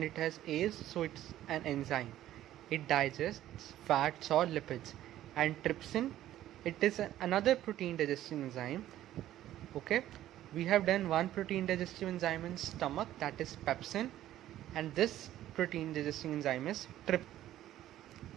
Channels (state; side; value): quieter; left; 13.2 dB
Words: it has A's, so it's an enzyme. It digests fats or lipids. And trypsin, it is another protein digesting enzyme. Okay, we have done one protein digestive enzyme in stomach, that is pepsin, and this protein digesting enzyme is trypsin.